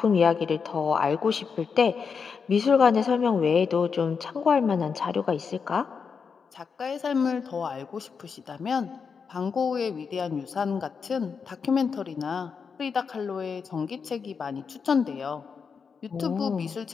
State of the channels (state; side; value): quieter; right; 5.8 dB